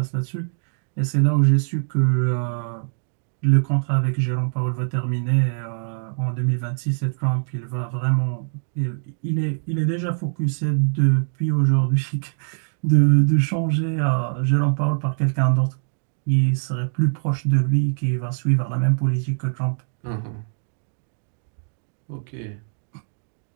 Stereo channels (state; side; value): silent; left; digital silence